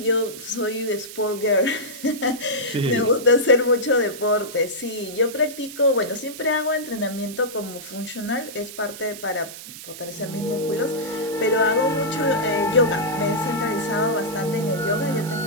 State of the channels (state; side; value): noise; right; hiss, 13 dB below the sound